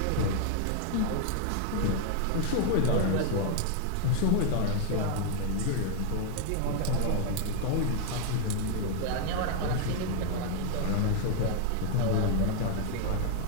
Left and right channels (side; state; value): both; different; correlation 0.00